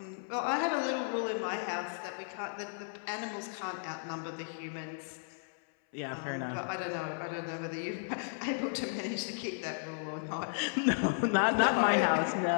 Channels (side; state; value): right; silent; 55 dB below the other